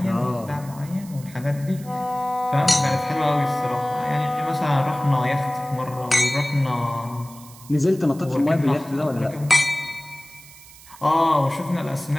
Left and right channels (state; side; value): noise; right; hiss, 20 dB below the sound